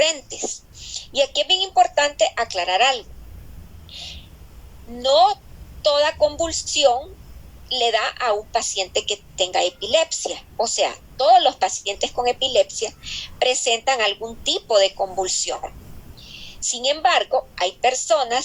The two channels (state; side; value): identical; both; correlation 1.00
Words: Y aquí es bien importante aclarar algo. No toda convulsión le da a un paciente que tenga epilepsia. O sea, todos los pacientes con epilepsia presentan algún tipo de convulsión. Sin embargo, hay